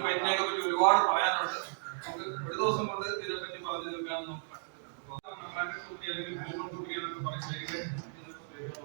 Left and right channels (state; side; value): silent; left; digital silence